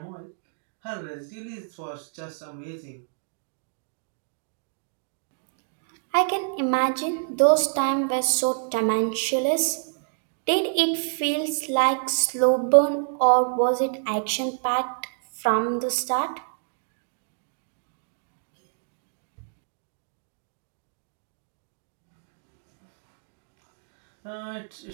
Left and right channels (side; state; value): left; silent; digital silence